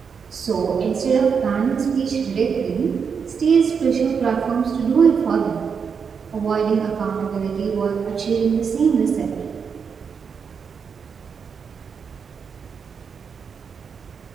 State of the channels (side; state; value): left; quieter; 6.3 dB